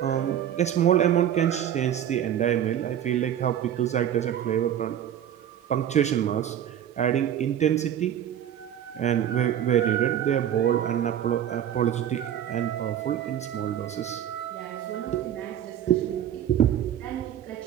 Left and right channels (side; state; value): left; quieter; 10.3 dB